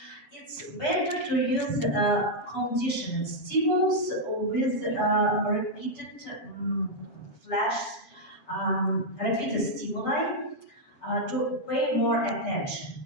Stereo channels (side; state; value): right; late; 7.0 ms